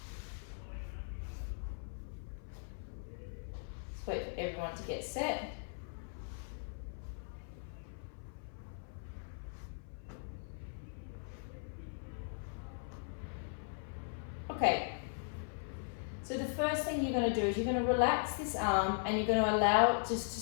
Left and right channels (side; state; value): right; silent; 52 dB below the other